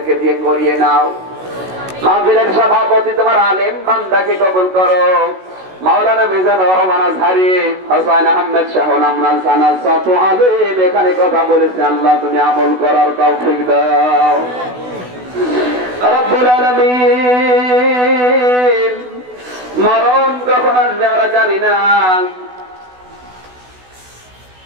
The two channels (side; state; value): left; late; 16 ms